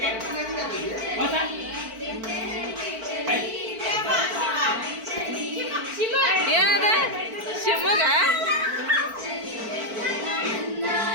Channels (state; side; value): late; left; 4.5 ms